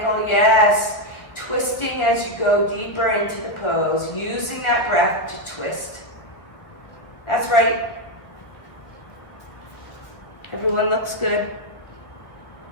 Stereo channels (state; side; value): late; right; 1.6 ms